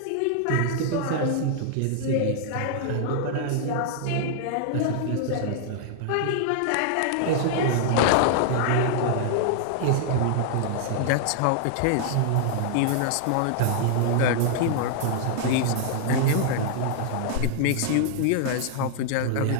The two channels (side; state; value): both; different; correlation -0.01